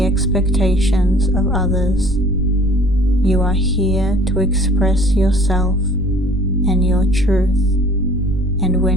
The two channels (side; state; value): right; noise; rumble, 11 dB below the sound